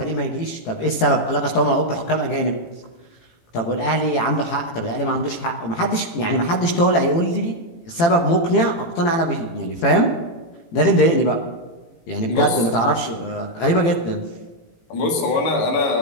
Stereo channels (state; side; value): late; right; 18 ms